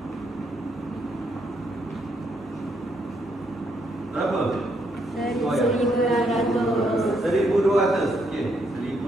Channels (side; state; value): both; normal; correlation 0.75